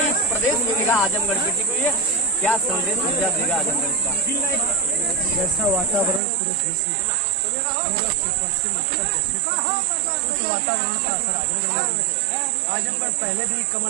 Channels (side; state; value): left; drops out; at 6.2 s